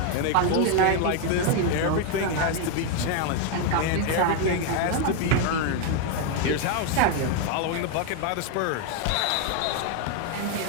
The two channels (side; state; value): both; different; correlation 0.01